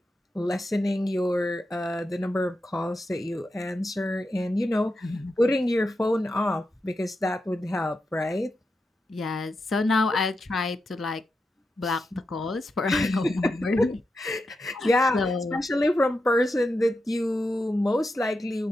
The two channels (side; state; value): both; normal; correlation 0.88